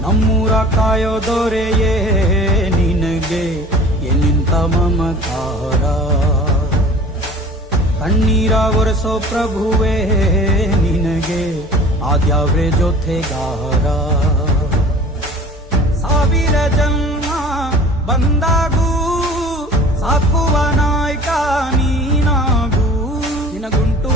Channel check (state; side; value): normal; both; correlation 0.44